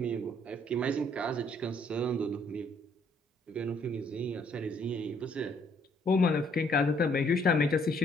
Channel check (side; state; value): both; normal; correlation 0.65